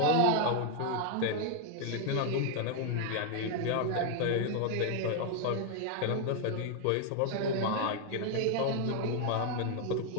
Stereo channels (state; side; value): different; both; correlation 0.00